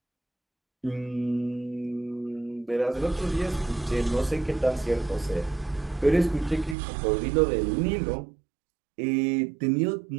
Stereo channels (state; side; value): drops out; left; at 6.8 s